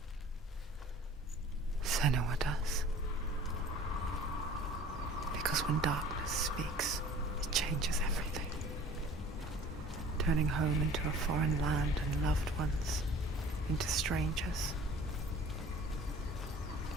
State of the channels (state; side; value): normal; both; correlation 0.47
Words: Senua does. Because when darkness speaks, it changes everything, turning home into a foreign land and loved ones into strangers.